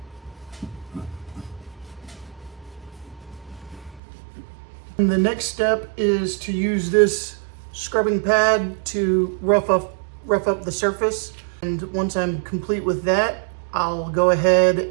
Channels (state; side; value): drops out; left; at 4.0 s